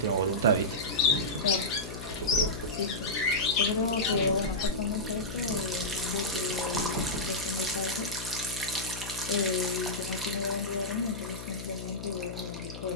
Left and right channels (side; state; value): left; noise; hum, 10 dB below the sound